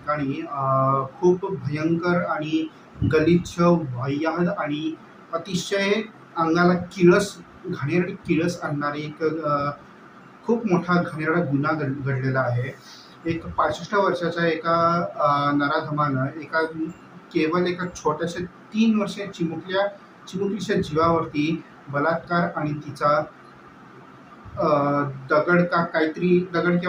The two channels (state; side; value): identical; both; correlation 1.00